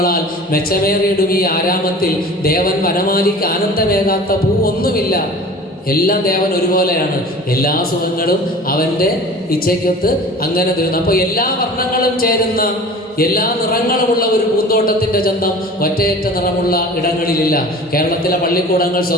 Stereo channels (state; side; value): normal; both; correlation 0.41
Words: മെച്ചമേറിയിടും ഈ ആരാമത്തിൽ ദേവൻ വനമാലിക്ക് ആനന്ദമേകാത്ത പൂ ഒന്നുമില്ല. എല്ലാം ദേവൻ ഒരുപോലെയാണ്, എല്ലാ സുഖങ്ങളും അവൻ്റെ ഇച്ഛയ്ക്കൊത്ത് അങ്ങനെ തരുന്നു. അപ്പോൾ എല്ലാ വർണ്ണങ്ങളും ചേരുന്ന എല്ലാ നിറങ്ങളുമുള്ള ഒരു പൂന്തോട്ടത്തിൻ്റെ ചന്തം ഒറ്റയേറ്റ നിറമുള്ള ഇടങ്ങളിലില്ല. കേരളത്തിലെ പള്ളിക്കൂടങ്ങൾ,